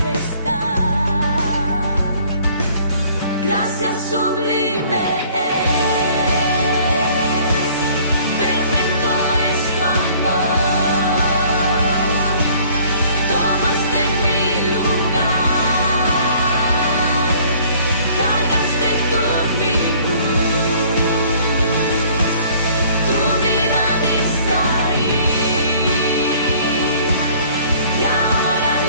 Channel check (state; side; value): inverted; both; correlation -0.55